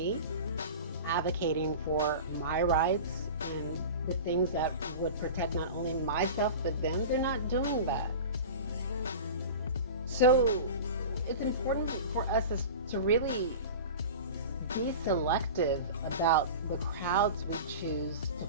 advocating for my rights and the things that would protect not only myself but them. They're not doing that. So it's important for us to really be selective about the crowds we choose to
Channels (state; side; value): inverted; both; correlation -0.33